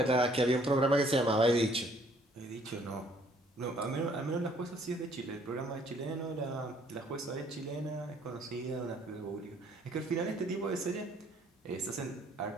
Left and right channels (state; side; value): normal; both; correlation 0.62